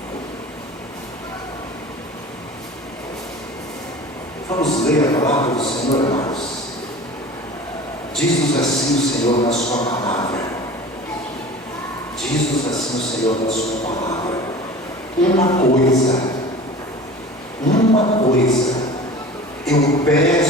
Vamos ler a palavra do Senhor, amados. Diz-nos assim o Senhor na sua palavra. Diz-nos assim o Senhor na sua palavra. Uma coisa eu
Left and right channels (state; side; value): normal; both; correlation 0.39